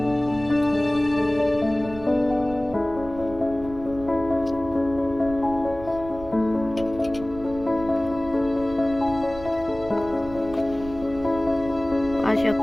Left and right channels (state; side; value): noise; right; rumble, 15 dB below the sound